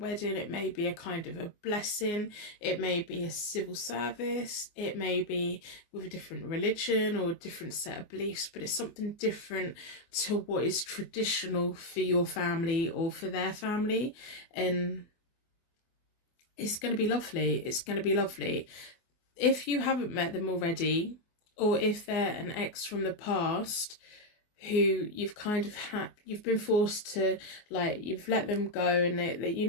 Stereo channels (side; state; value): right; late; 24 ms